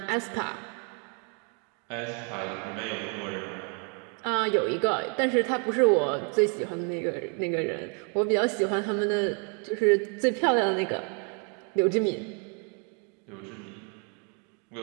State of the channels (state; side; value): quieter; left; 39.2 dB